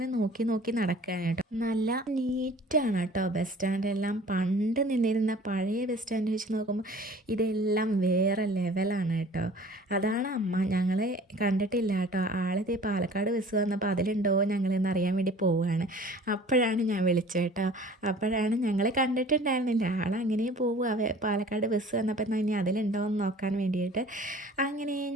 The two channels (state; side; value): normal; both; correlation 0.47